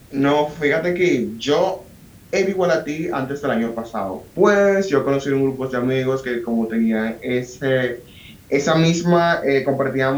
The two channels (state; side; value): identical; both; correlation 1.00